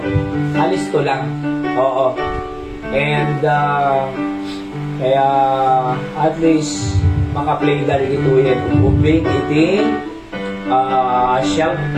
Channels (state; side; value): identical; both; correlation 1.00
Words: alisto lang. Oo. And, kaya, at least, makaplay dali ito yung ubing, iti, siyang,